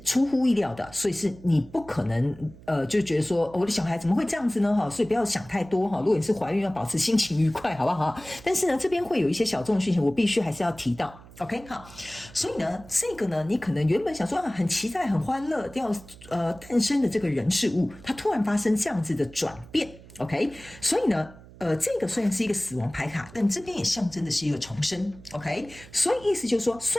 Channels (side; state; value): right; noise; hum, 20 dB below the sound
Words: 出乎意料的，所以是你不可能就觉得说我的小孩怎么会这样子呢所以不要想太多如果你是怀孕要保持心情愉快好不好但是呢这边会有一些小众的讯息我必须还是要提到 OK 好，所以呢这个呢你可能原本想说很期待很欢乐要诞生的这个人事物，它突然发生这样子的转变 OK， 所以呢这个虽然是一个死亡牌卡，但这边也象征的是一个重生 OK， 所以意思就是说